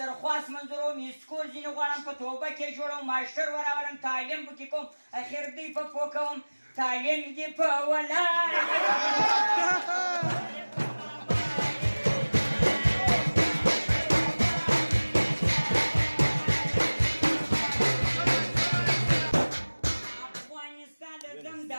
درخواست منظوروم اسکول ځینې غواړم په توبه کې جوړوم ماشټر وراولم تعلیم پکې کوم اخر دوی په پوه کوم تعلیم دې په ولاړ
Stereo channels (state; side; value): inverted; both; correlation -1.00